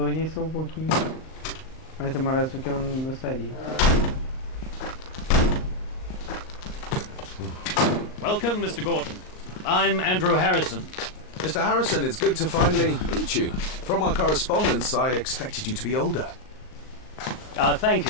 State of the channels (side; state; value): right; late; 38 ms